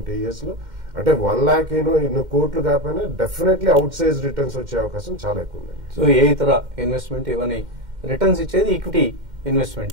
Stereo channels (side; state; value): left; late; 2.1 ms